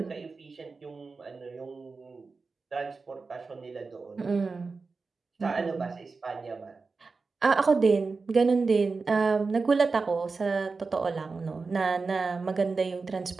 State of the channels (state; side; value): quieter; left; 4.3 dB